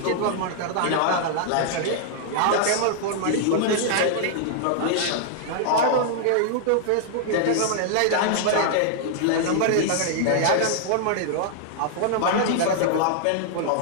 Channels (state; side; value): different; both; correlation -0.01